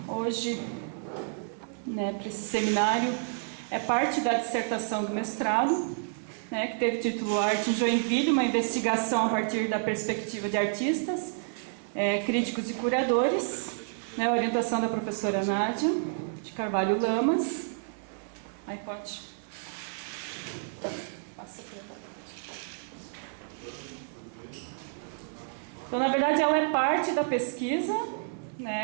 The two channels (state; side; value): silent; left; 58 dB below the other